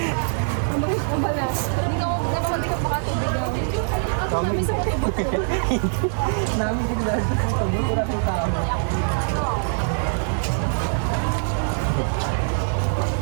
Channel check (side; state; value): left; silent; digital silence